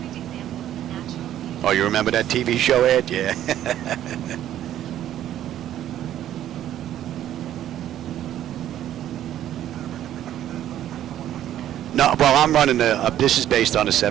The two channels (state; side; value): quieter; left; 11.8 dB